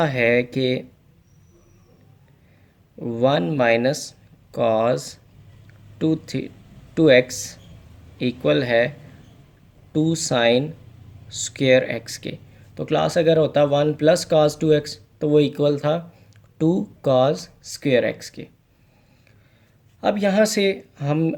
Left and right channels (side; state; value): both; identical; correlation 1.00